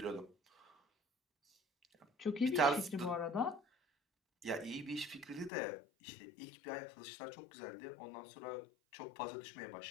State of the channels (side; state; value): right; drops out; at 5.5 s